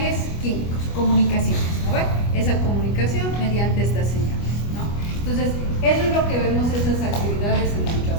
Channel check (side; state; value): right; late; 25 ms